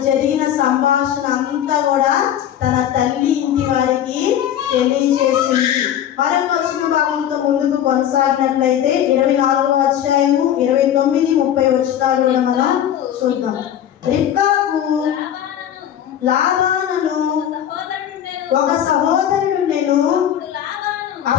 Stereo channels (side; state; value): right; quieter; 10.4 dB